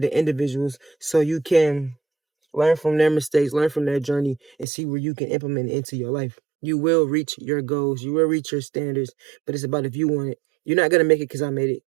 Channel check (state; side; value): drops out; left; at 4.7 s